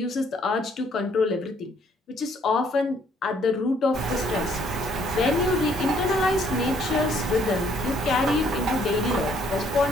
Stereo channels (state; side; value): normal; both; correlation 0.65